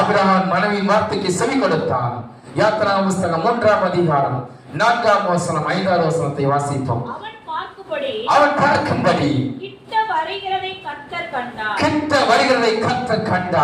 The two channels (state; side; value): identical; both; correlation 1.00